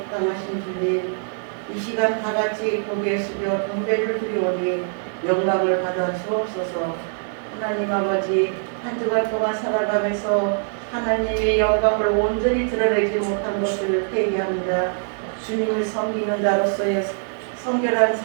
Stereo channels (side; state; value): left; silent; 60 dB below the other